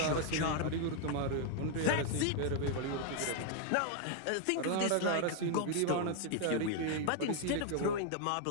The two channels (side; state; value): both; different; correlation 0.00